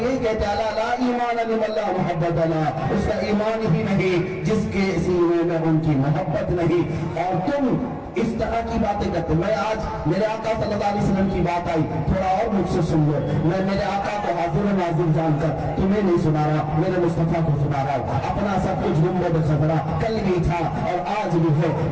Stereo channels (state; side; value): identical; both; correlation 1.00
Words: یہی کہتے ہیں لا ایمان لمن لا محبت له، اس کا ایمان ہی نہیں جس کے سینے میں ان کی محبت نہیں۔ اور تم اس طرح کی باتیں کرتے، میں آج میرے آقا صلی اللہ علیہ وسلم کی بات آئی، تھوڑا اور مجھ سے سن لو، میں میرے آقا کو حاضر ناظر جان کر تمہیں نہیں سنا رہا، میرے مصطفیٰ کو سنا رہا ہوں۔ اپنا سب کچھ گنبد خضرا کل بھی تھا اور آج بھی ہے،